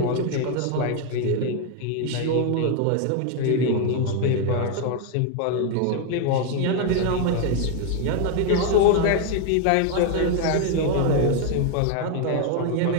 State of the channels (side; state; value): both; different; correlation 0.01